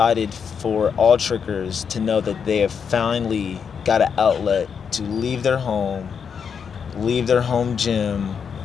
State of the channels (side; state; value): right; quieter; 6.7 dB